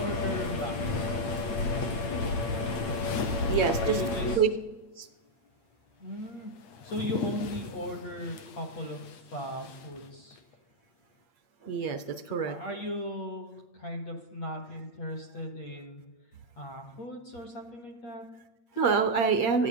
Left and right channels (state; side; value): late; right; 8.6 ms